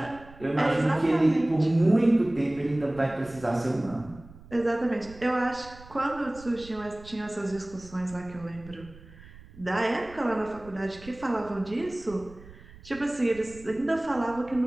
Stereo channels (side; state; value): right; noise; rumble, 20 dB below the sound